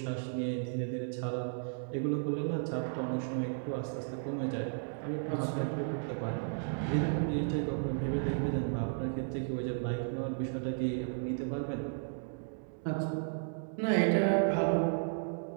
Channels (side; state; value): left; silent; digital silence